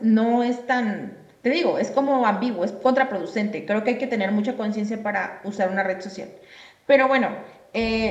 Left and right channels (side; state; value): both; identical; correlation 1.00